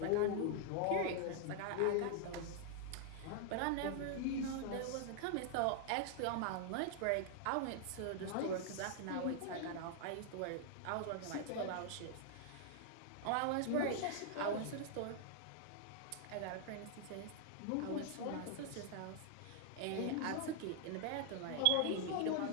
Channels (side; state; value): both; different; correlation -0.01